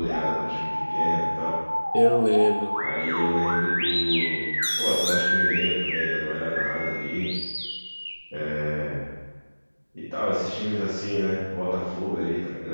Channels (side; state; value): both; inverted; correlation -1.00